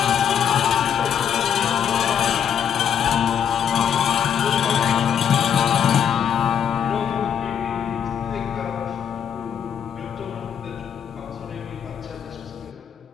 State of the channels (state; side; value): quieter; right; 8.4 dB